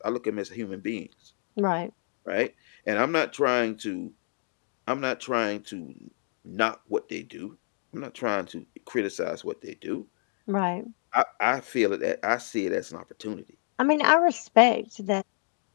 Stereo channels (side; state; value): right; silent; digital silence